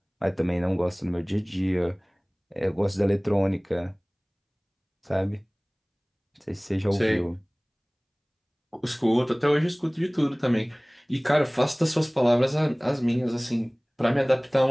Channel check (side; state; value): both; identical; correlation 1.00